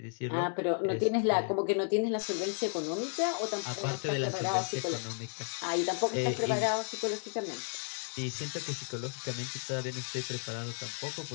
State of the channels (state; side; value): silent; right; digital silence